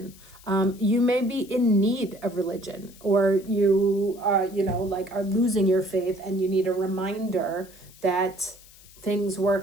You may be in need of religion, or you like are losing your faith and you need a reminder that things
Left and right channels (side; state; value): left; noise; hiss, 23 dB below the sound